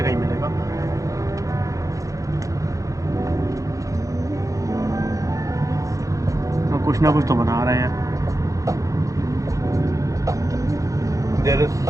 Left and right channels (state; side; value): late; left; 0.16 ms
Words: ही मिलेगा. तो कुछ ना कुछ तो बना रहे हैं. There is